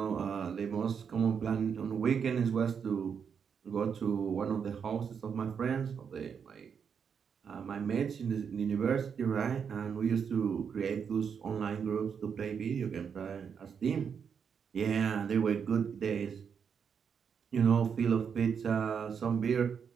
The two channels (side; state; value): left; quieter; 6.9 dB